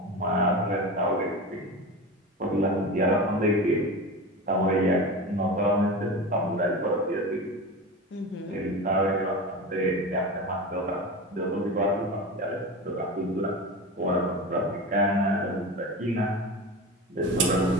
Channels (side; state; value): both; normal; correlation 0.27